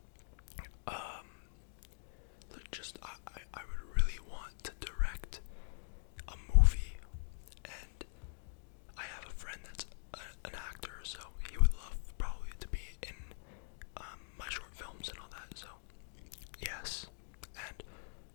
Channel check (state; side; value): silent; right; digital silence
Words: I would really want to direct a movie, and I have a friend that's an actor, so he would love probably to be in my short films and all that. So yes, and